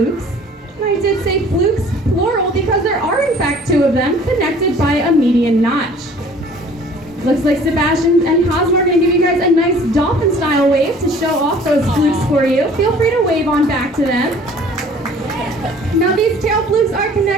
And I did say flukes, plural, because there are in fact 2 of them connected by a median notch. Looks like Sebastian and Cosmo are going to give you guys a nice dolphin-style wave to show off those flukes for you. Feel free to wave on back to them. Now these tail flukes are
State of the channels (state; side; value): normal; both; correlation 0.51